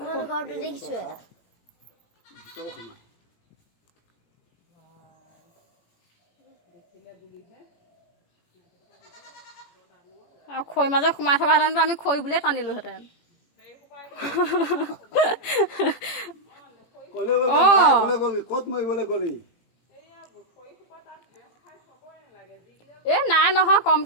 আৰু খৈ মাজত সোমাই থকাহেঁতেনতো আমি খৈ বুলিয়ে টানিলোহেঁতেন ক'ত মৰিবলৈ গ'লি এ নাই নহয়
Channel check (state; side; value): late; right; 18 ms